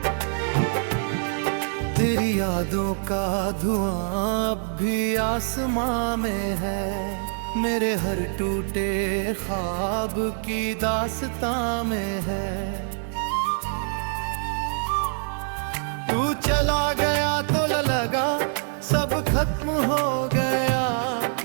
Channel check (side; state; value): left; silent; 58 dB below the other